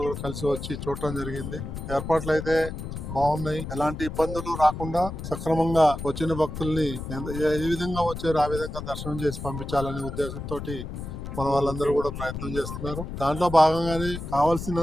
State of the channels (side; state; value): left; noise; rumble, 7 dB below the sound